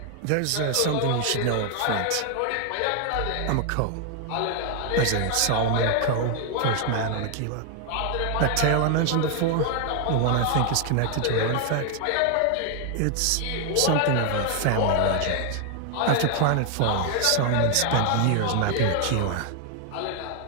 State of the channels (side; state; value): both; different; correlation 0.00